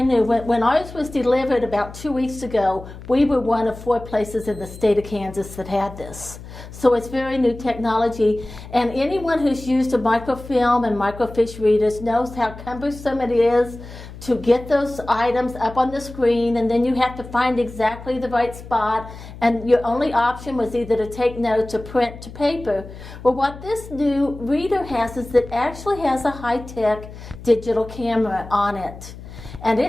when ours was delivered about 2 weeks ago, we were one of 4 places in the state of Kansas that had this. So it's very new technology, and anyone who's used a microfilm and microfiche readers knows how cumbersome it is to get those items up on the screen, and then you have to find exactly the right spot, and your only option was either to take notes or print to paper. Well, what this new reader has is it actually has a high-tech digital camera on it. And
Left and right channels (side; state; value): left; noise; hum, 15 dB below the sound